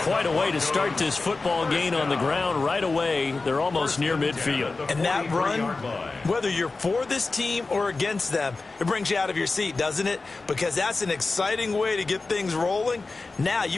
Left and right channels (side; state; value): right; quieter; 3.7 dB